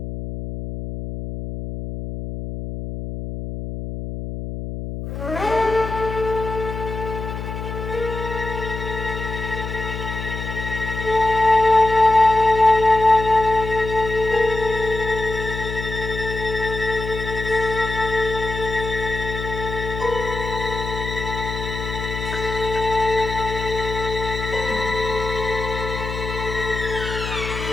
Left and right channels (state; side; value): noise; left; hum, 6 dB below the sound